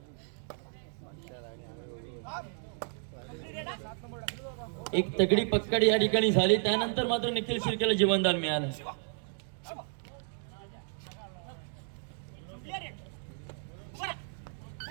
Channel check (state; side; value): silent; left; 56 dB below the other